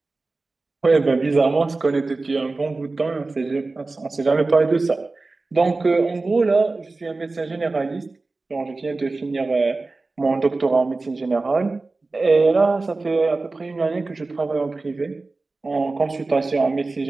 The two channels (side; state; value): left; quieter; 3.5 dB